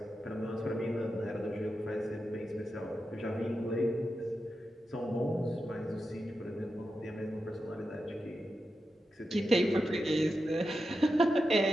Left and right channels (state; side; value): normal; both; correlation 0.89